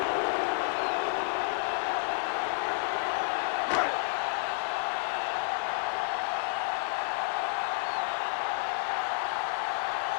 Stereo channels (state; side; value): silent; right; 58 dB below the other